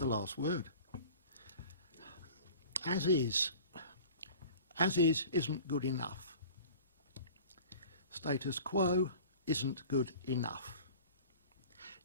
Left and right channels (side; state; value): both; inverted; correlation -0.43